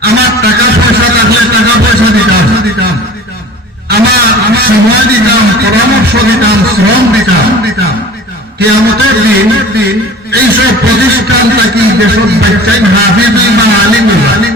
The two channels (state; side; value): normal; both; correlation 0.42